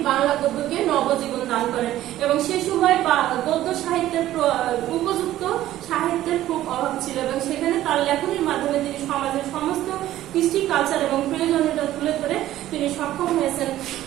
বাংলা গদ্যকে নবজীবন দান করেন এবং সে সময় গদ্য সাহিত্যের উপযুক্ত সাহিত্যের খুব অভাব ছিল এবং সেখানে তার লেখনীর মাধ্যমে তিনি সমাজের সমস্ত কৃষ্টি কালচার এবং প্রয়োজনীয়তা তুলে ধরে তিনি সক্ষম হয়েছেন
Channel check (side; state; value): left; quieter; 13.9 dB